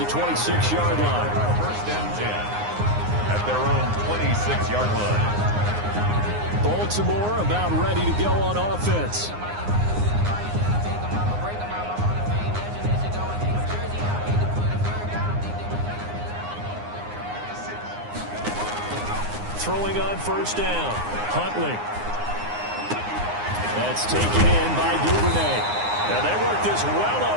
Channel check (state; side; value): late; left; 9.7 ms